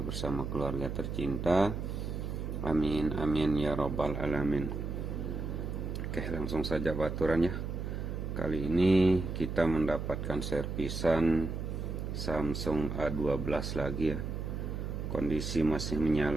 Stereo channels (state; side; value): noise; right; hum, 4 dB below the sound